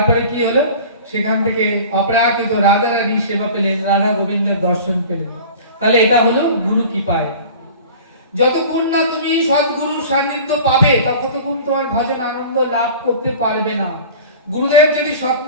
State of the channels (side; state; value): both; inverted; correlation -0.40